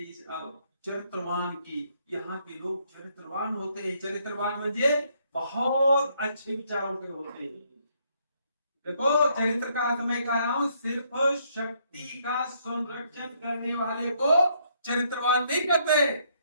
इस चरित्रवान की, यहाँ के लोग चरित्रवान होते हैं। चरित्रवान म्हणजे बहुत अच्छे विचारों के होते हैं। देखो चरित्र का अर्थ मैं कह रहा हूं, सिर्फ शक्ति का संरक्षण करने वाले को चरित्रवान नहीं कहते।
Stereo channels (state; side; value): inverted; both; correlation -0.71